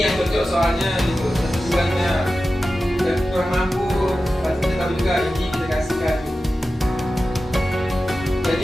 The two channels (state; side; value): normal; both; correlation 0.93